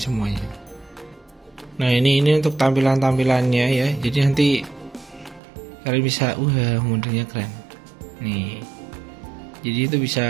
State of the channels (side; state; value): left; drops out; at 5.4 s